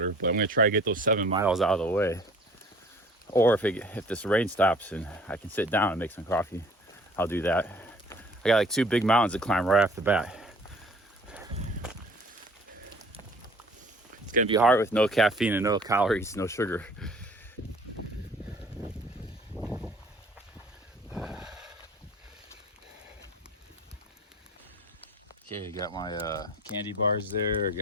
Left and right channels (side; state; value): both; normal; correlation 0.51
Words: but I'm gonna try to get those 7 miles out of the way. Or if this rain stops and I can sit down and make some coffee, I'll do that. I got like 2 big mountains to climb right off the bat. It's gonna be hard with no caffeine and no calories, no sugar. Okay, I got my candy bars there,